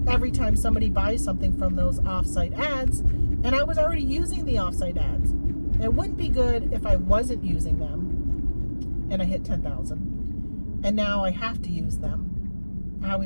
every time somebody buys something from those offsite ads. And I was already using the offsite ads. It wouldn't be good if I wasn't using them and I hit 10,000. And now I have to use them. I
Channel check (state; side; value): inverted; both; correlation -1.00